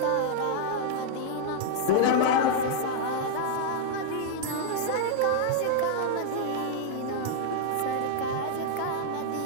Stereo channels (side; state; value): both; different; correlation -0.01